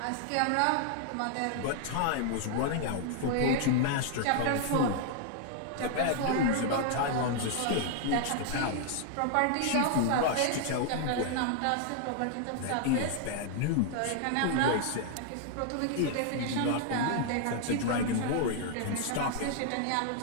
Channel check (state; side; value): different; both; correlation 0.00